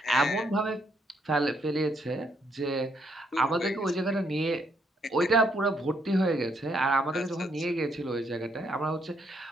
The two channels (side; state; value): both; normal; correlation 0.73